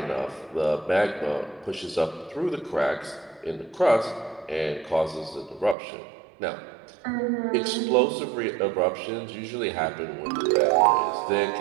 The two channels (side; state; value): left; drops out; at 5.8 s